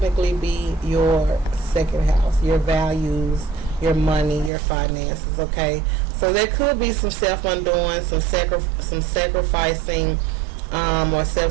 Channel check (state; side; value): drops out; left; at 4.5 s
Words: be your second house, your values, your money, your finances. Okay, so there could be some self-undoing, some sacrificing, or